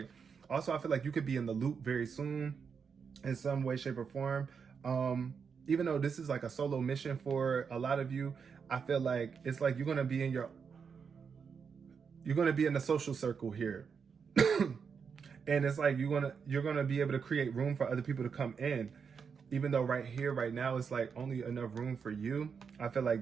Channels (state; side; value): quieter; left; 6.2 dB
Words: also, I feel like you could be in the loop very soon in some way, shape, or form. Even though this is like a solo mission for a lot of you, I feel like it's like you're gonna be in the social circle here. And it's like you're gonna be able to create room for other people to come in. even though right here, right now, it's like only enough room for you. I feel like